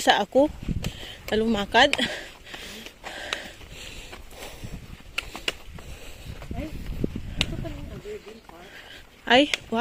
ako. Talumakad. Ay,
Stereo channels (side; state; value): both; identical; correlation 1.00